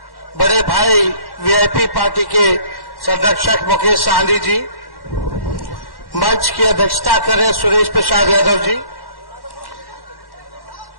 बड़े भाई वीआईपी पार्टी के संरक्षक मुकेश साहनी जी, मंच की अध्यक्षता कर रहे सुरेश प्रसाद यादव जी,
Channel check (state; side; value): late; right; 1.1 ms